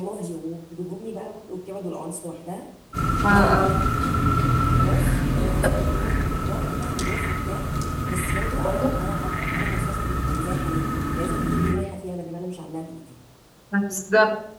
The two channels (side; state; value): both; identical; correlation 1.00